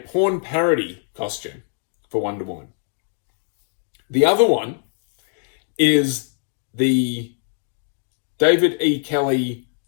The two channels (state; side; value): silent; right; digital silence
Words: parody costume for Wonder Woman. The other one is the David E. Kelly